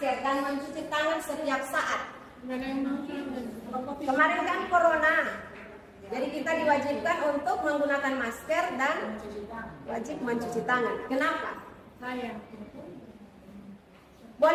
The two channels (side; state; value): both; identical; correlation 1.00